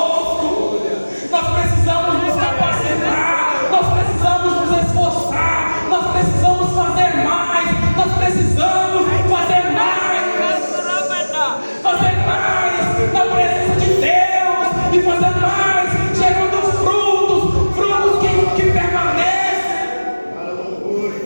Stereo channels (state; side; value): inverted; both; correlation -1.00